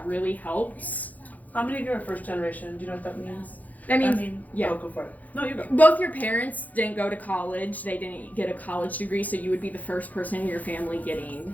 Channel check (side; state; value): right; late; 0.079 ms